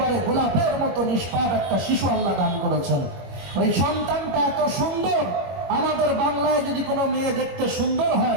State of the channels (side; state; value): left; late; 22 ms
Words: গোলাপের মতো নিষ্পাপ একটা শিশু আল্লাহ দান করেছেন। ওই সন্তানটা এত সুন্দর, আমাদের বাংলায় যদি কোনো মেয়ে দেখতে সুন্দর